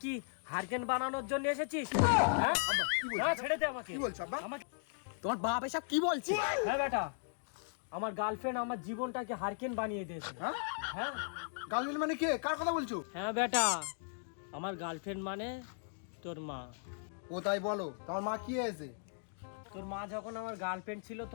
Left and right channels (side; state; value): right; silent; digital silence